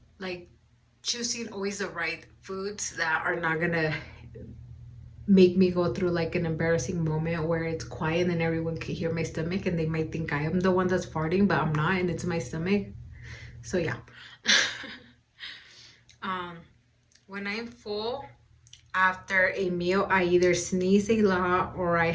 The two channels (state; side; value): identical; both; correlation 1.00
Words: like choosing always the right foods that are not gonna make me go through like an embarrassing moment where it's quiet and everyone can hear my stomach and they might think I am the one that's farting, but I'm not, and it's my stomach. So yeah. um when I'm full after a meal, I either sneeze a lot or I